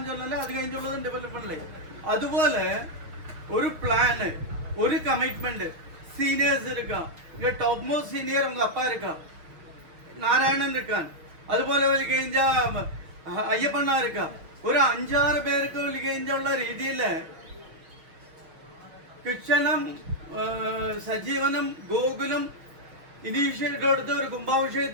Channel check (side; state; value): left; late; 6.5 ms